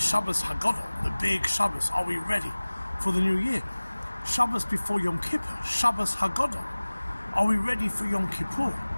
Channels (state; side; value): inverted; both; correlation -1.00